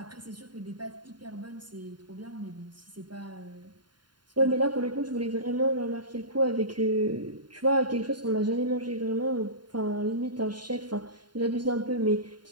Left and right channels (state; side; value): late; left; 0.71 ms